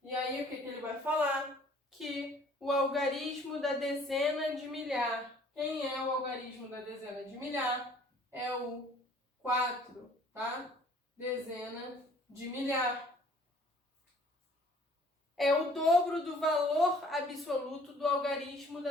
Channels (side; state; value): both; normal; correlation 0.55